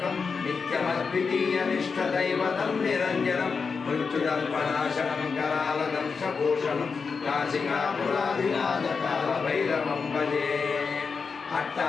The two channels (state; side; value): quieter; right; 5.2 dB